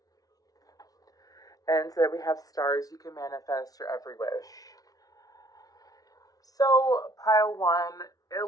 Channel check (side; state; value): right; late; 0.18 ms